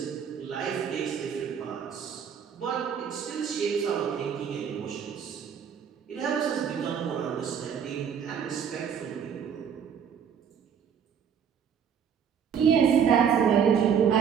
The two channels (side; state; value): left; quieter; 7.7 dB